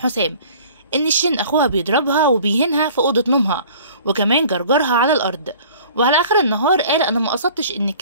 إن شيرين أخوها بيضربها وبيهينها في أوضة نومها، وكمان جرجرها على الأرض. وعلى آخر النهار قال أنا ما قصدتش إن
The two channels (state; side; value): inverted; both; correlation -0.48